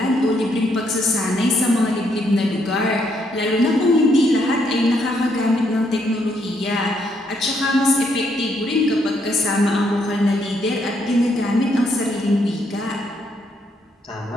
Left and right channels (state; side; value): normal; both; correlation 0.73